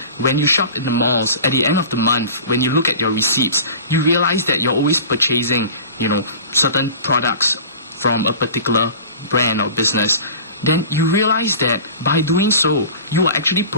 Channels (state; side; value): inverted; both; correlation -0.39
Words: when you shop in the malls, at the end of the month, when you look at your receipts, you realize that you're always purchasing, certain products from a particular brand or business. Then you realize that by doing so, you are actually